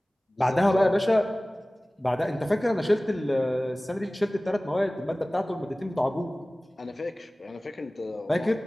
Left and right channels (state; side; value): normal; both; correlation 0.98